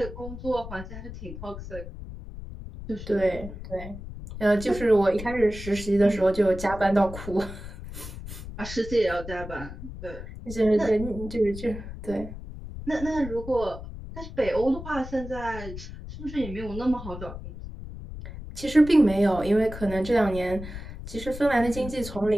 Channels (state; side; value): noise; left; rumble, 11 dB below the sound